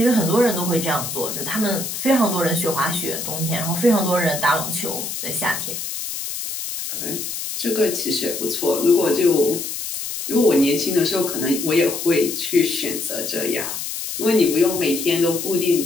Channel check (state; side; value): noise; left; hiss, 5 dB below the sound